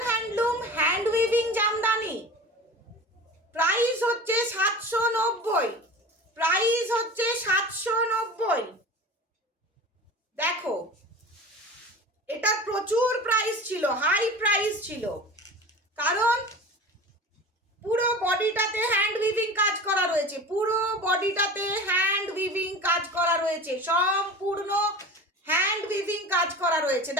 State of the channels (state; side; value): normal; both; correlation 0.34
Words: handloom hand weaving Jamdani. Price হচ্ছে 790, প্রাইস হচ্ছে 790। দেখো এটা প্রচুর প্রাইস ছিল, হাই প্রাইস ছিল, কারণ পুরো বডিটাতে হ্যান্ড উইভিং কাজ করা রয়েছে, পুরো বডিটাতে হ্যান্ড উইভিং কাজ করা রয়েছে, সম্পূর্ণ হ্যান্ড উইভিং কাজ করা রয়েছে।